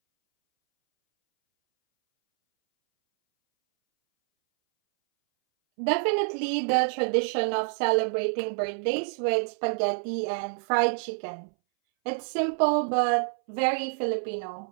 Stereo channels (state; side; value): silent; left; 60 dB below the other